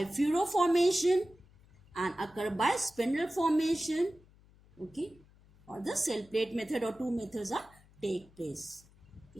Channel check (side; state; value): left; noise; hum, 27 dB below the sound